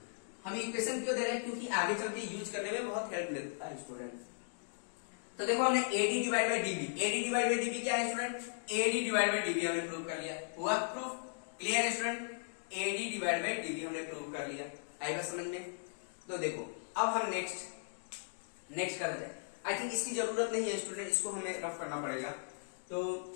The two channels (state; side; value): silent; right; digital silence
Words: हम इक्वेशन क्यों दे रहे हैं, क्योंकि आगे चलते यूज करने में बहुत हेल्प मिलता है स्टूडेंट। तो देखो हमने AD divide by DB, AD divide by DB क्या है student, AD divide by DB हमने प्रूव कर लिया। हुआ प्रूफ? क्लियर है student? AD divide by DB हमने प्रूव कर लिया। आई बात समझ में? तो देखो अब हम नेक्स्ट करते हैं। आई थिंक इसकी जरूरत नहीं है स्टूडेंट, इसको हमें रफ करना पड़ेगा, तो